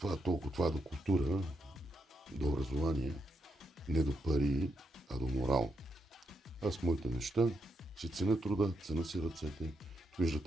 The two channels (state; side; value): normal; both; correlation 0.81